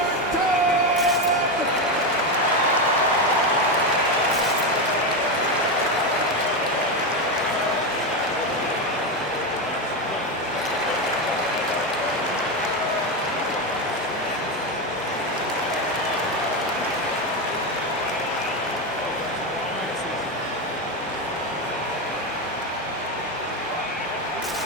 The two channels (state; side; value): normal; both; correlation 0.12